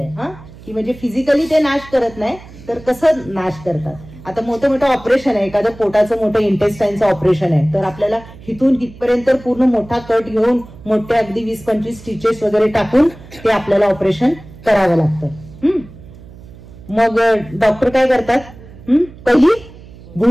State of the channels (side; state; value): right; noise; hum, 19 dB below the sound